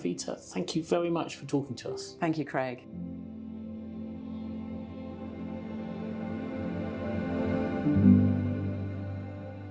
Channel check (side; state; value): both; identical; correlation 1.00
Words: thank you very much for talking to us. Thank you, Craig. Thank you.